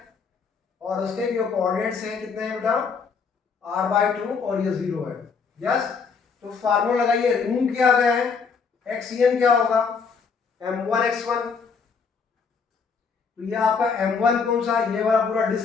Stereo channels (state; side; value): quieter; right; 5.5 dB